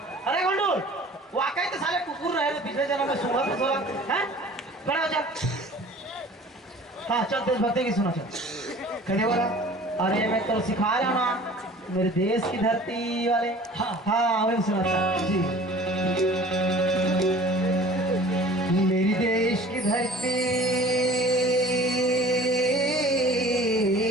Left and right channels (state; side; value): normal; both; correlation 0.46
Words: अरे घुंडूर वाकई तो साले कुकुर रहे थे पिछले जन्म में, सूंघा तो सोला हैं? बड़ा हो जा। हाँ चल देशभक्ति की सुना चल। कैसे बोला? अरे मैं तो सिखा रहा ना मेरे देश की धरती वाले। हाँ वही सुना था जी। मेरी देश की धरती